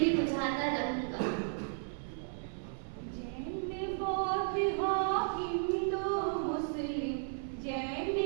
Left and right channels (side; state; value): left; silent; digital silence